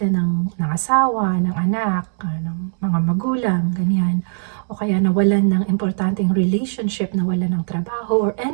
ng asawa, ng anak, ng mga magulang, ganyan, o kaya nawalan ng importanteng relationship, nawalan ng trabaho, or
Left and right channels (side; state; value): left; silent; digital silence